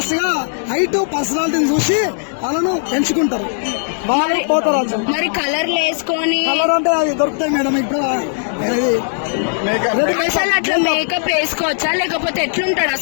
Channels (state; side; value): silent; right; digital silence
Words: గా హైట్, పర్సనాలిటీని చూసి వాళ్ళను ఎంచుకుంటారు. వాళ్ళు పోతరాజు. మరి కలర్లు వేసుకొని కలర్ అంటే అది దొరుకుతాయి మేడం. ఇప్పుడు అసలు అట్లా మేకప్ వేసుకోవచ్చా లేకపోతే ఎట్లుంటాడు